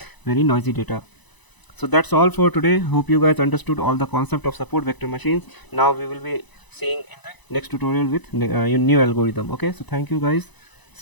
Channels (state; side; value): late; right; 1.0 ms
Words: very noisy data. So that's all for today. Hope you guys understood all the concept of support vector machines. Now we will be seeing in the next tutorial with new algorithm. Okay, so thank you guys,